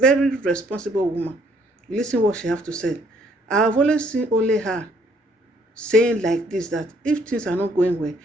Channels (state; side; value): normal; both; correlation 0.65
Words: responsible woman. You listen what she have to say. I have always seen only her saying like this, that if things are not going well,